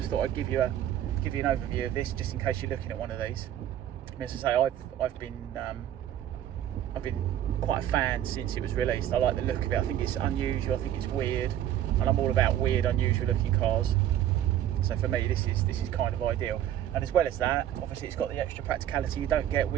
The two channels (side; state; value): left; quieter; 11.5 dB